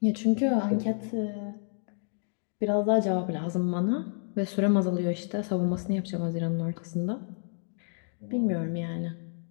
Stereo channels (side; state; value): right; silent; 58 dB below the other